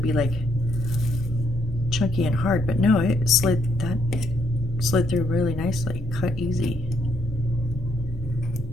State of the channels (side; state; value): both; normal; correlation 0.73